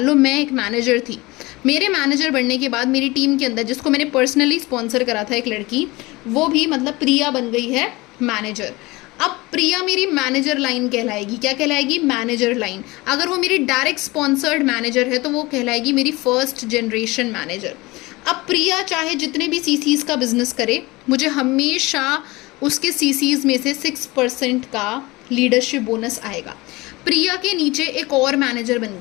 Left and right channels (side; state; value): right; quieter; 22.1 dB